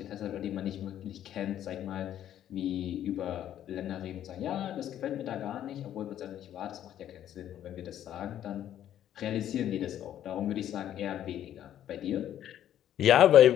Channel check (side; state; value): right; quieter; 11.2 dB